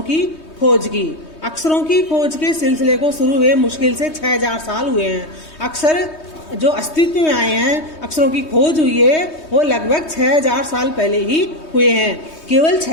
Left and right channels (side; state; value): right; late; 3.2 ms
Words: की खोज की। अक्षरों की खोज के सिलसिले को शुरू हुए मुश्किल से 6,000 साल हुए हैं। अक्षर जो अस्तित्व में आए हैं, अक्षरों की खोज हुई है, वो लगभग 6,000 साल पहले ही हुए हैं। केवल